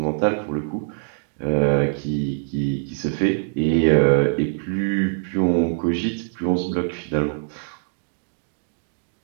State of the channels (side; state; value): left; silent; digital silence